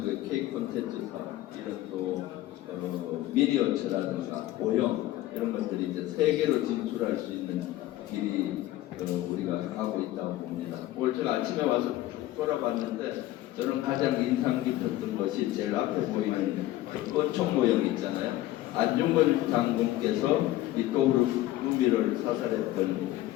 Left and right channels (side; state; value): right; quieter; 15.4 dB